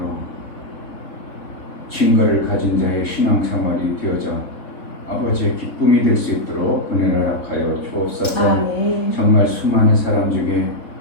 증거를 가진 자의 신앙생활이 되어져 아버지의 기쁨이 될 수 있도록 은혜를 허락하여 주옵소서. 아멘. 정말 수많은 사람 중에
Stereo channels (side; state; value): right; late; 3.8 ms